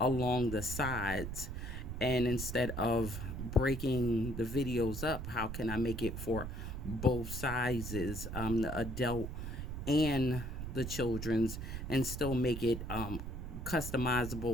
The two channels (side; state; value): right; noise; rumble, 6 dB below the sound